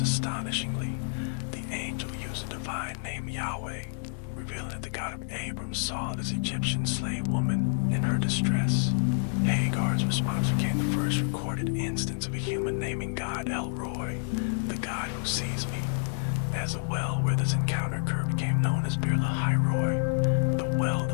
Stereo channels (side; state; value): right; silent; digital silence